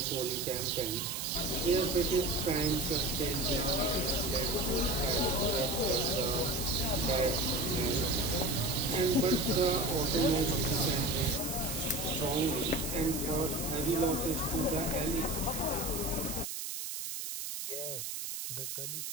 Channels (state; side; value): noise; right; hiss, 5 dB below the sound